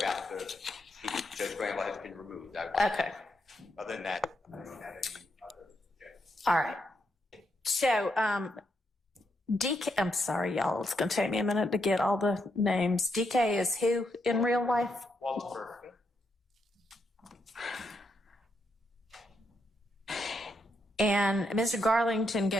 Judge Glanville has been removed. Okay. Other than that, I don't have any other objections. All right. So, DK, I'm sorry, y'all. It's going to take me a minute to get all the names. DK is who in real life? Walter. And Mr. Garlington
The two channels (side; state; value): both; normal; correlation 0.80